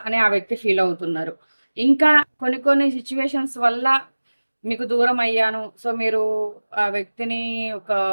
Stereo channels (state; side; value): inverted; both; correlation -1.00